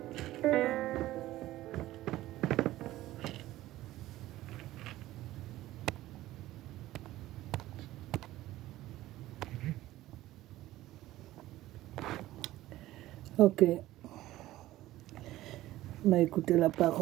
Ok. On a écouté la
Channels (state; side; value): quieter; left; 15.7 dB